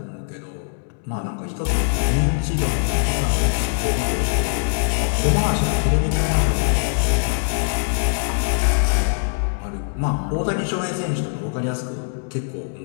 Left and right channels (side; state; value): right; silent; digital silence